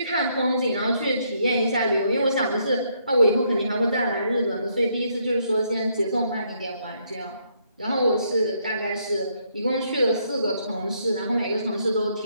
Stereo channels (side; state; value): both; inverted; correlation -0.72